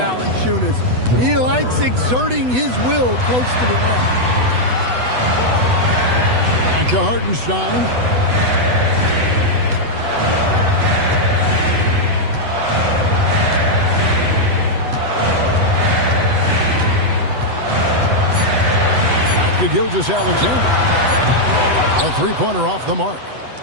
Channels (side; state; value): left; late; 8.0 ms